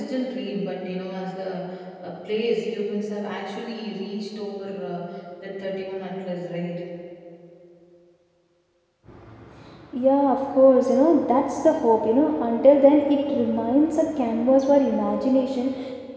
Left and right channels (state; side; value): identical; both; correlation 1.00